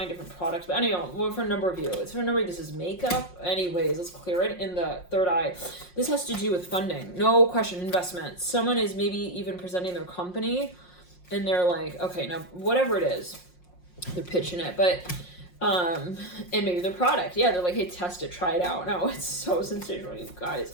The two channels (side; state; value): right; late; 5.6 ms